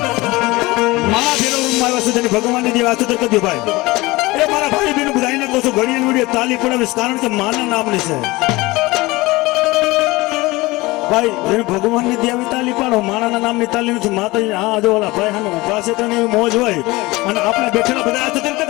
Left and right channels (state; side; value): quieter; right; 21.5 dB